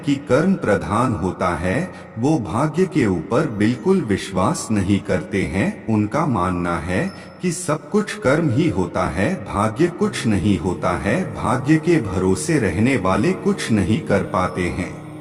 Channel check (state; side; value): identical; both; correlation 1.00